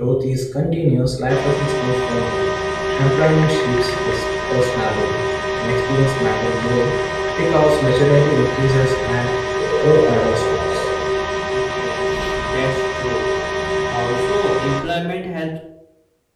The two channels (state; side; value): identical; both; correlation 1.00